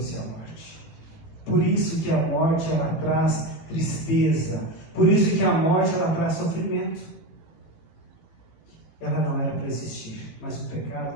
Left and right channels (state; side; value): late; right; 18 ms